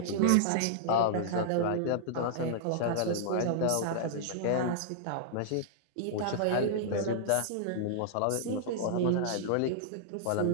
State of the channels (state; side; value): different; both; correlation -0.02